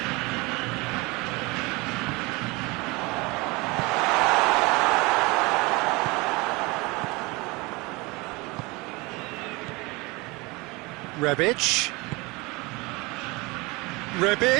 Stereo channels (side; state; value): left; quieter; 24.7 dB